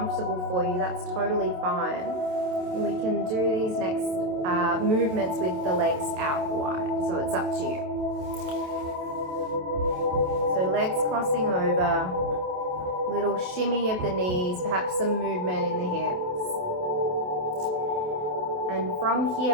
for you, that's totally fine. And we can do these next movements with the legs out wide. So it's up to you. So legs crossing over. Little shimmy of the knees, perhaps some movement in the hips. And from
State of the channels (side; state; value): left; late; 27 ms